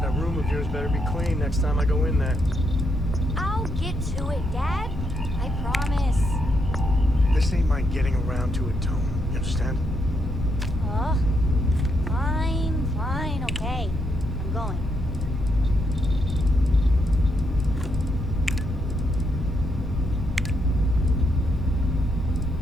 that room of yours better be clean next time I go in there. I'll get to it, Dad. I promise. This ain't my getting around to it, Tone. You understand? Fine, okay. I'm going.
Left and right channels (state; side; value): normal; both; correlation 0.78